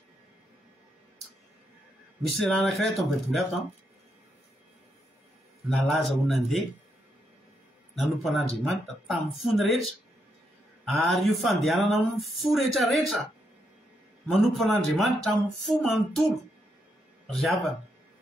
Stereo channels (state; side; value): normal; both; correlation 0.80